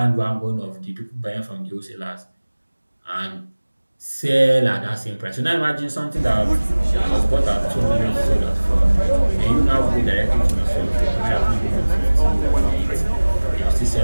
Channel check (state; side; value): inverted; both; correlation -1.00